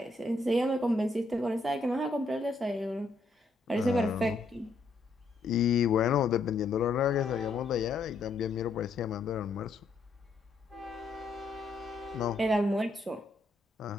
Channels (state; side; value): quieter; right; 3.3 dB